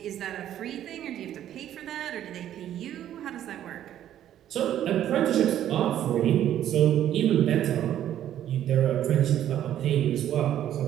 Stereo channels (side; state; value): left; quieter; 11.3 dB